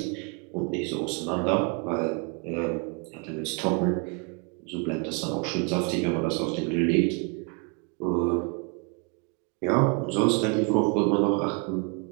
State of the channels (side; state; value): left; quieter; 34.5 dB